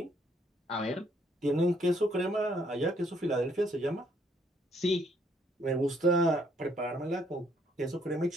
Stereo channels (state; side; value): normal; both; correlation 0.68